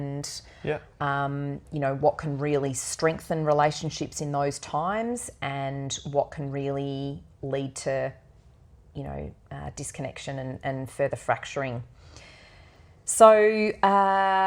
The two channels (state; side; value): identical; both; correlation 1.00